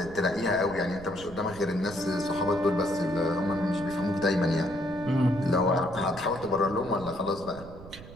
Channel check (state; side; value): noise; right; rumble, 16 dB below the sound